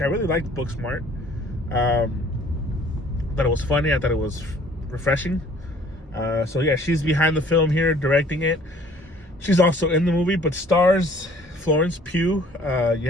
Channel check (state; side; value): normal; both; correlation 0.55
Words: I really liked Booksmart. Thought it was funny. I thought it was refreshing. She's behind the film here, directing it. She's also in the movie, but stars Florence Pugh.